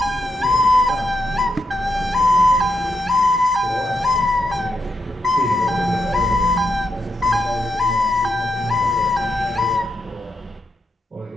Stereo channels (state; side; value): normal; both; correlation 0.82